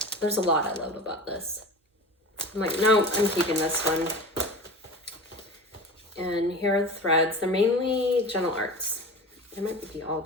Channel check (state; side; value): normal; both; correlation 0.33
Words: there's a lot I love about this. I'm like, no, I'm keeping this one. And here are the threads. They're mainly Gentle Arts. They might be all